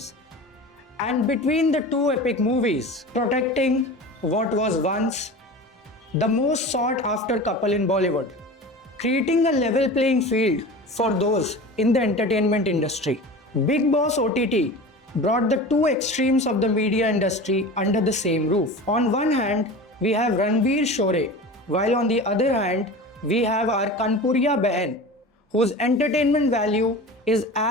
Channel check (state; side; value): normal; both; correlation 0.33